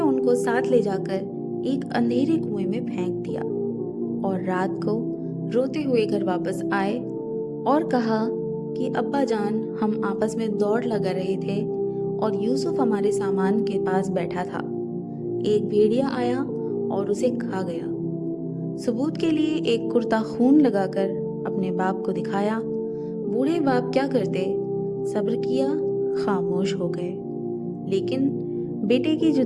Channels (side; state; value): both; identical; correlation 1.00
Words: उनको साथ ले जाकर एक अंधेरे कुएं में फेंक दिया और रात को रोते हुए घर वापस आए और कहा कि अब्बा जान, हम आपस में दौड़ लगा रहे थे और यूसुफ हमारे सामान के पास बैठा था। एक भेड़िया आया और उसे खा गया। सबूत के लिए एक कुर्ता खून लगाकर अपने बाप को दिखाया। बूढ़े बाप क्या करते, सब्र किया, खामोश हो गए, लेकिन बेटे की